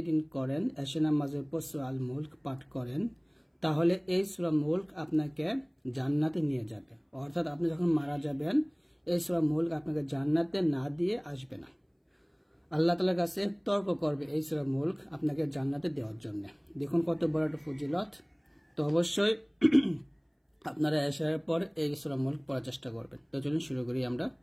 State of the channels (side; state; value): both; identical; correlation 1.00